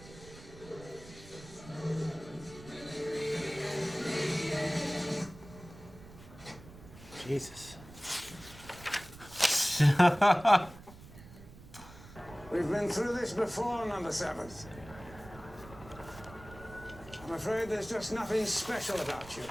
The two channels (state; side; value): noise; right; rumble, 18 dB below the sound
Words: Jesus. We've been through this before, number 7th. I'm afraid there's just nothing special about you.